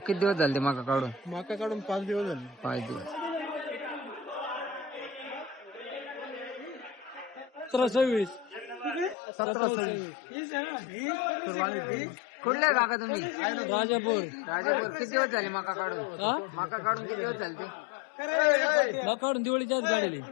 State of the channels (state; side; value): drops out; right; at 9.2 s